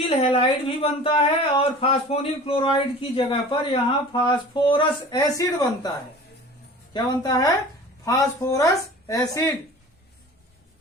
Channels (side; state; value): both; normal; correlation 0.41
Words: हैलाइड भी बनता है और फास्फोनिल क्लोराइड की जगह पर यहां फास्फोरस एसिड बनता है। क्या बनता है, फास्फोरस एसिड।